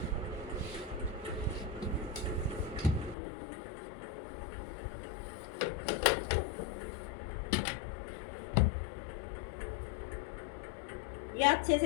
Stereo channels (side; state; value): right; drops out; at 3.2 s